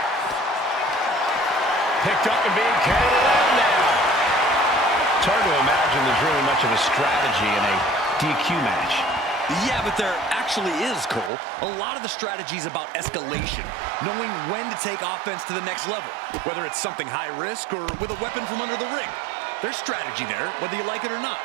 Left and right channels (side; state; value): left; drops out; at 11.3 s